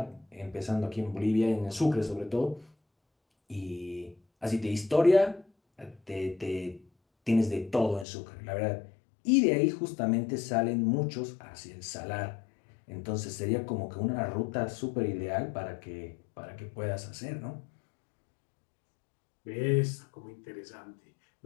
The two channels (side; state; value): right; drops out; at 8.1 s